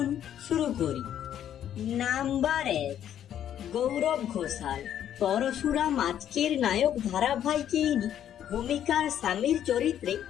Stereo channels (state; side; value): quieter; right; 10.3 dB